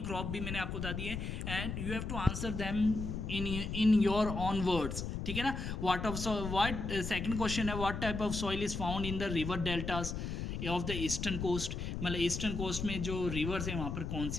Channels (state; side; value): noise; left; rumble, 4 dB below the sound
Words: क्रॉप भी मैंने आपको बता दिए and you have to answer them in your own words, ठीक है ना। व्हाट सेकंड क्वेश्चन है, what type of soil is found in the river deltas of the eastern coast, मतलब ईस्टर्न कोस्ट में जो रिवर्स हैं वहाँ पर कौन